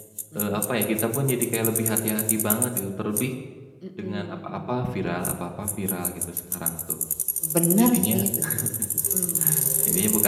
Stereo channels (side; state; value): both; identical; correlation 1.00